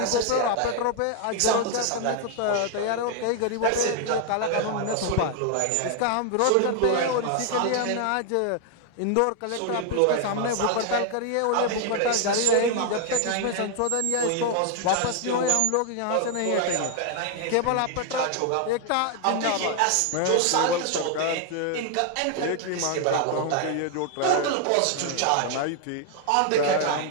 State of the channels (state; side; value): different; both; correlation 0.00